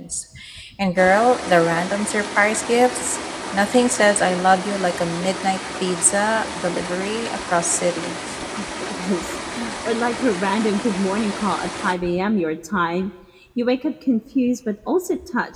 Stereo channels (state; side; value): identical; both; correlation 1.00